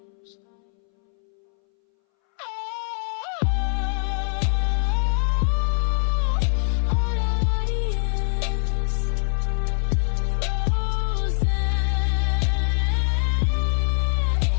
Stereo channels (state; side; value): silent; right; 62 dB below the other